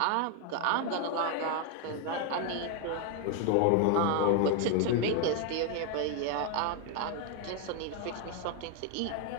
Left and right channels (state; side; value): different; both; correlation 0.01